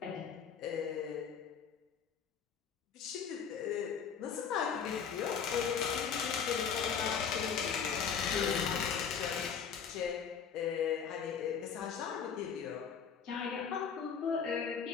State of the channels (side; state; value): right; quieter; 7.0 dB